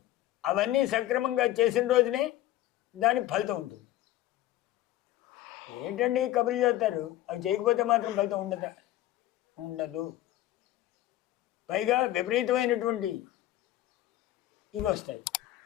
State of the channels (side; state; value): right; quieter; 14.5 dB